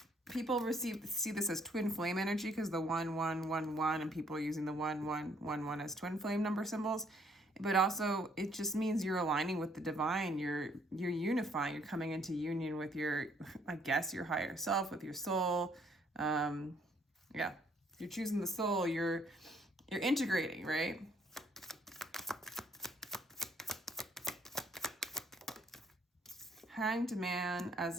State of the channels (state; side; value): normal; both; correlation 0.66